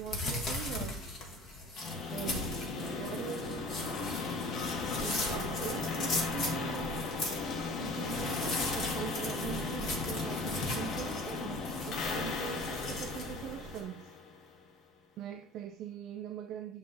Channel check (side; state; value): both; normal; correlation 0.44